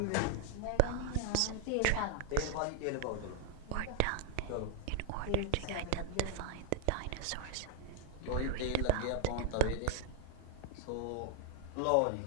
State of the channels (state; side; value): different; both; correlation 0.00